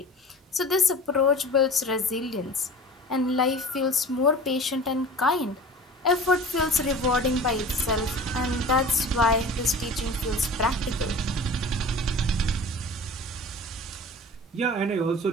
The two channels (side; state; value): both; normal; correlation 0.39